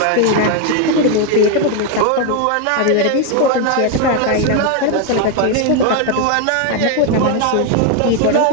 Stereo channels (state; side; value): different; both; correlation 0.01